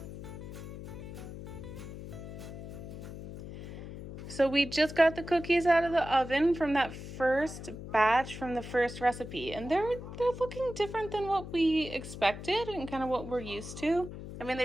So we just got the cookies out of the oven from that first batch from the first recipe. And they're looking different than what we expected and kind of what we're used to. I mean,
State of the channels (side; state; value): left; noise; hum, 10 dB below the sound